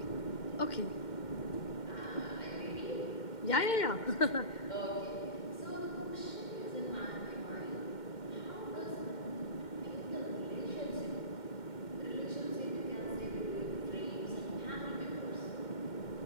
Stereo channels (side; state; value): right; late; 2.1 ms